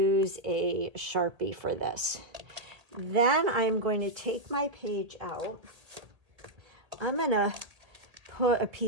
a Sharpie for this. Then I'm going to take my page out. I'm going to put a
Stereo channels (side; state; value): left; late; 1.7 ms